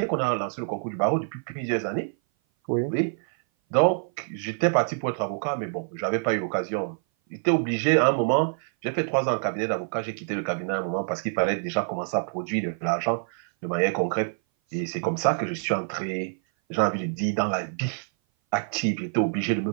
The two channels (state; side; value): silent; left; 57 dB below the other